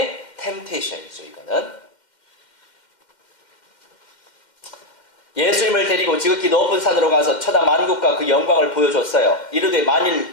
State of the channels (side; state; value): right; late; 2.1 ms